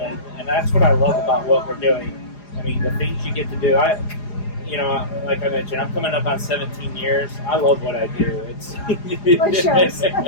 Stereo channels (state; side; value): late; right; 4.9 ms